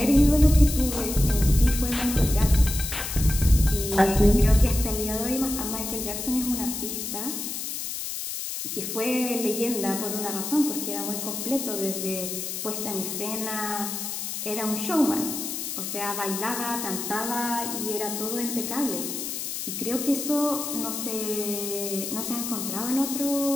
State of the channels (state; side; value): noise; left; hiss, 5 dB below the sound